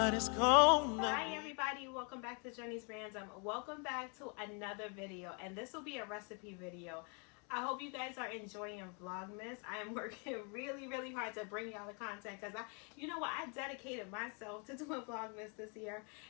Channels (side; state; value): right; quieter; 36.4 dB